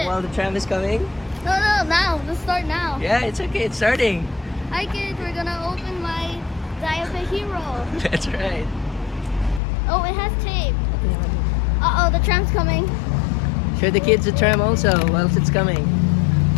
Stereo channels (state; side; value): drops out; right; at 9.6 s